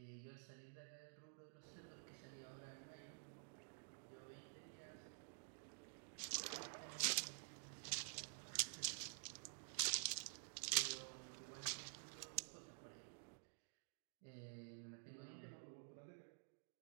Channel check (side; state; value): left; silent; digital silence